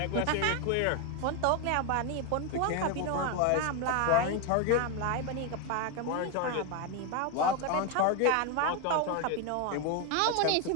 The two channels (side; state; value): both; different; correlation 0.01